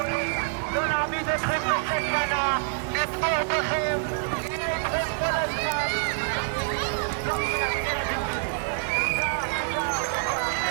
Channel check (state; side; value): silent; left; 61 dB below the other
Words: לא נעמיד אתכם בסכנה, נתמוך בכם, נהיה איתכם כל הזמן. לא מבינים ילדים שלי. תודה, תודה, תודה,